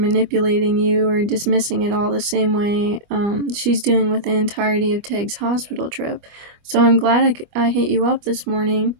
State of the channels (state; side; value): late; left; 25 ms